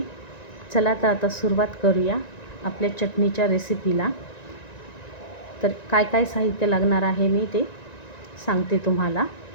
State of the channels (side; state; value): right; late; 1.9 ms